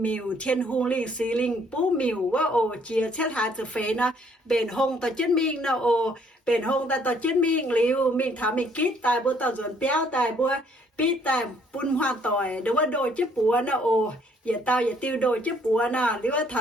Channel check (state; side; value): normal; both; correlation 0.64